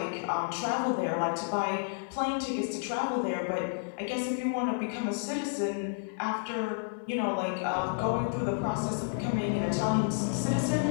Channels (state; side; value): silent; right; digital silence